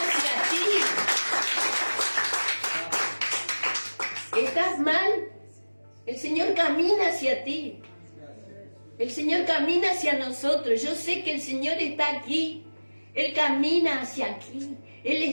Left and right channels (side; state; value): both; inverted; correlation -1.00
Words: hacia ti. ¿Estás mal? El Señor camina hacia ti. El Señor camina hacia nosotros. Yo sé que el Señor está aquí. Él camina hacia aquí. Él